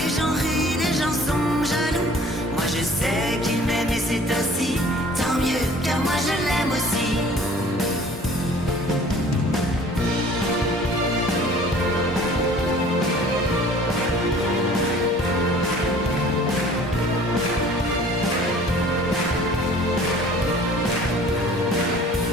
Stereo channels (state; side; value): normal; both; correlation 0.50